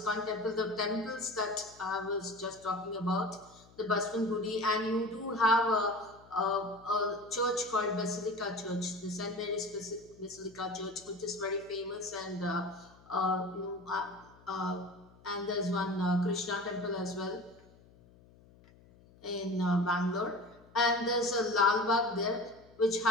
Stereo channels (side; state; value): left; noise; hum, 26 dB below the sound